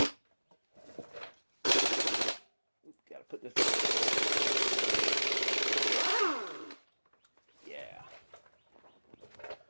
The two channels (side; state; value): both; inverted; correlation -1.00